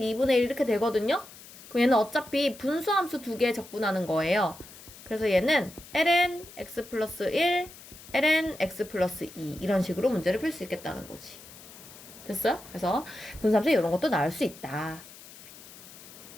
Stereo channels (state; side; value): noise; left; hiss, 18 dB below the sound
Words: 1 이렇게 되거든요? 그럼 얘는 어차피 분수함수 2개 적분하는 거예요. 그래서 얘는 ln x 플러스 1, ln x 플러스 2 이런 식으로 문제를 풀 수 있겠다는 거지. 됐어요? 그래서 분수함수 이런 것도 나올 수 있다.